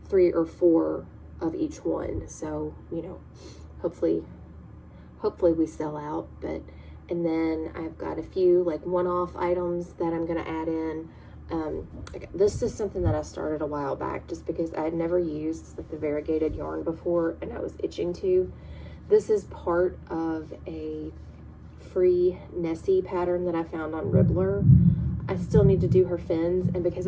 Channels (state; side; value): identical; both; correlation 1.00